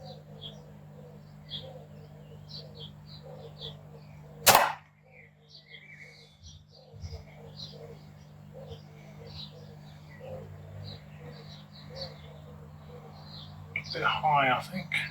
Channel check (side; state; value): both; identical; correlation 1.00